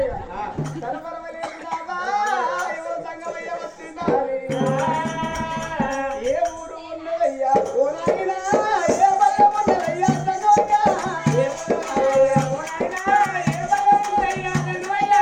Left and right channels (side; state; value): both; identical; correlation 1.00